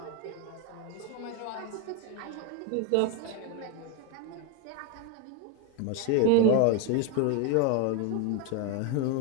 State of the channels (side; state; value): both; different; correlation 0.02